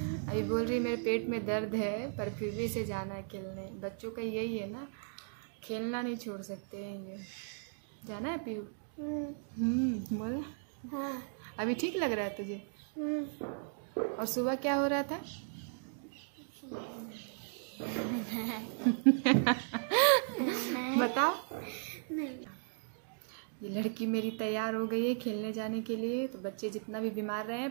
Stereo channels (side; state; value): left; silent; digital silence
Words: अभी बोल रही मेरे पेट में दर्द है, पर फिर भी इसे जाना है खेलने। बच्चों का यही है ना, खेलना नहीं छोड़ सकते हैं ये। जाना है पीयू? बोल। हाँ। अभी ठीक लग रहा है तुझे? और सुबह क्या हो रहा था? बताओ। ये लड़की मेरी तैयार हो गई है खेलने जाने के लिए। तो बच्चे जितना भी बीमार रहे हैं,